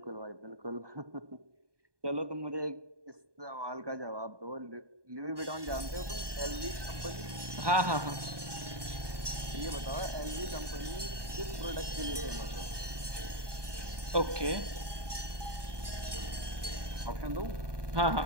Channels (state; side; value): late; left; 1.2 ms